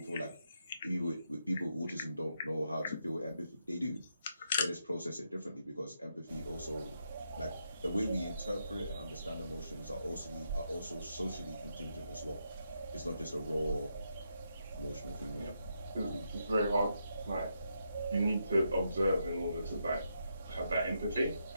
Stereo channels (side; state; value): both; inverted; correlation -0.80